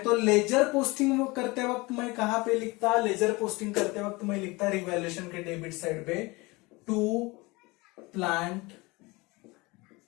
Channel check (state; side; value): quieter; right; 23.9 dB